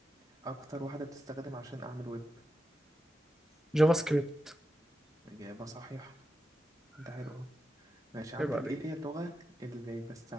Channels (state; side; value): normal; both; correlation 0.89